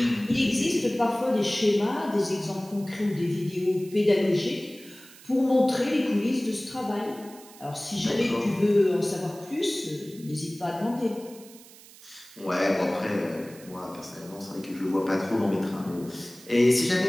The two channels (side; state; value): right; noise; hiss, 21 dB below the sound